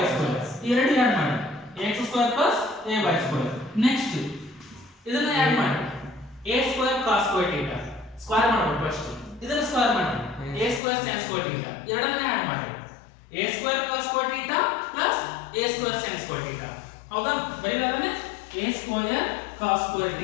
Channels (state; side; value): drops out; right; at 10.8 s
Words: ಸ್ಕ್ವೇರ್ ಈ ಎರಡು ಆಡ್ ಮಾಡಿ ax square plus ay square next ಇದನ್ನ ಆಡ್ ಮಾಡಿ a square cos square theta square ಮಾಡಬೇಕು ಫಸ್ಟ್ ಇದನ್ನ ಸ್ಕ್ವೇರ್ ಮಾಡಿ a square sin square theta ಎರಡನ್ನ ಆಡ್ ಮಾಡಿ a square cos square theta plus a square sin square theta ಹೌದಾ ಬರೀಲಾದನೆ a square cos square